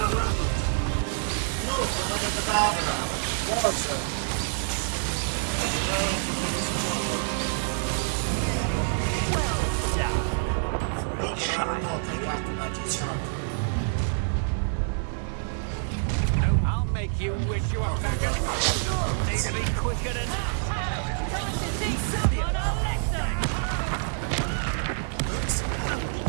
I'll make you wish you were back at home. Need to be quicker than that.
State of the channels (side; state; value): left; silent; digital silence